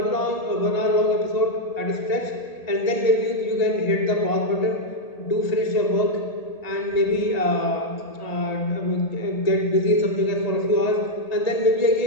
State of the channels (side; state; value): right; late; 1.8 ms